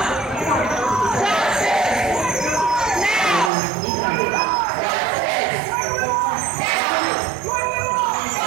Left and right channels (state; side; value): drops out; left; at 3.5 s